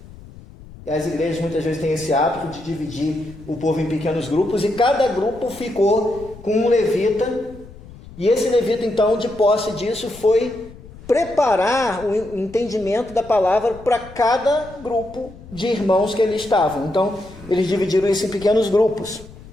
e as igrejas muitas vezes têm esse hábito de dividir o povo em pequenos grupos, e cada grupo ficou com um levita, e esse levita, então, de posse disso, foi preparar o entendimento da palavra para cada grupo de irmãos que ali estavam. Então, eles dividiram isso em pequenos grupos.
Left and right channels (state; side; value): noise; left; rumble, 19 dB below the sound